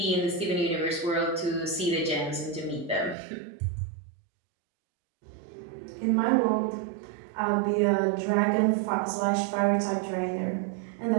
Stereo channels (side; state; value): left; drops out; at 3.2 s